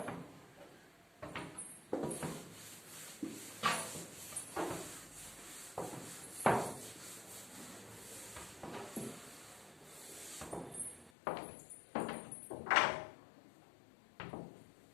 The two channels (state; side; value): drops out; right; at 11.1 s